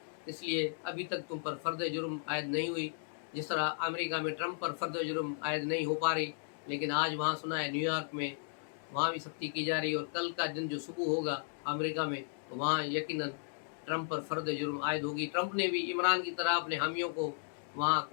इसलिए अभी तक तुम पर फर्द जुर्म आयद नहीं हुई। जिस तरह अमेरिका में ट्रंप पर फर्द जुर्म आयद नहीं हो पा रही, लेकिन आज वहाँ सुना है न्यूयॉर्क में वहाँ भी सख्ती की जा रही है, और कल का दिन जो सुबह होगा अमेरिका में तो वहाँ यकीनन ट्रंप पर फर्द जुर्म आयद होगी। ट्रंप ने भी इमरान की तरह अपने हामियों को वहाँ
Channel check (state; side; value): silent; right; digital silence